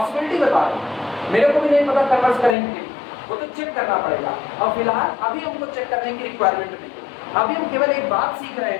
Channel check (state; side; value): drops out; right; at 2.6 s